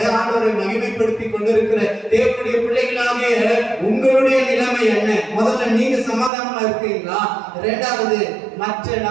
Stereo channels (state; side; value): drops out; left; at 6.3 s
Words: ஆண்டவரை மகிமைப்படுத்தி கொண்டிருக்கிற தேவனுடைய பிள்ளைகளாகிய உங்களுடைய நிலைமை என்ன? முதல்ல நீங்க சமாதானமா இருக்கிறீங்களா? இரண்டாவது மற்ற